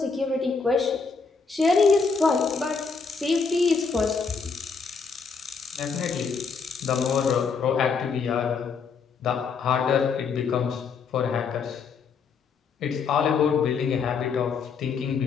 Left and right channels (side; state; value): right; quieter; 5.2 dB